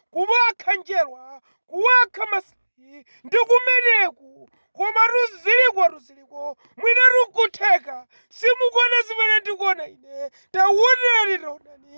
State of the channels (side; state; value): both; inverted; correlation -1.00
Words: kuwakha njerwa, kuwakha masayi, ndi kumeneku koma ruziliko mwina rukutheka simukuona zimene ndikuona ine.